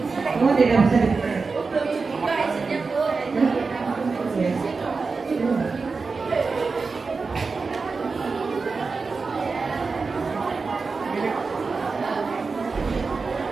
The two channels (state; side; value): quieter; left; 4.4 dB